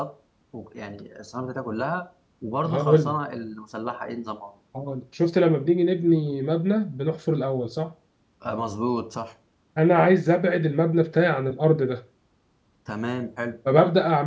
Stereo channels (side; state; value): both; identical; correlation 1.00